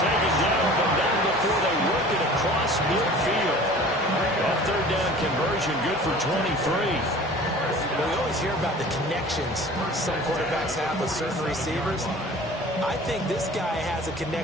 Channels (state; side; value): normal; both; correlation 0.44